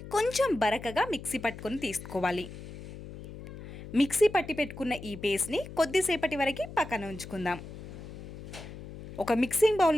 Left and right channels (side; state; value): left; noise; hum, 13 dB below the sound